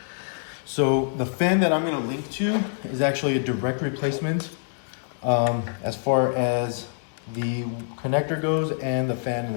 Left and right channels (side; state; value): right; silent; digital silence